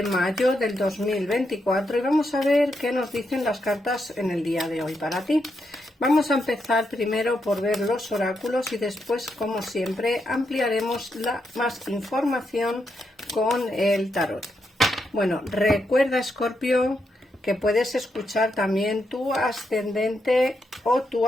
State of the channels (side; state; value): both; normal; correlation 0.82